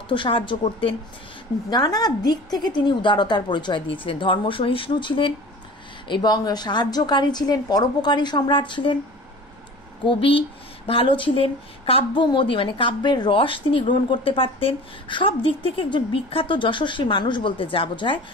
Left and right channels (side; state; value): both; normal; correlation 0.40